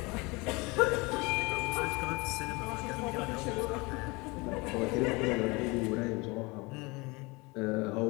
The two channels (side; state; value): right; quieter; 25.6 dB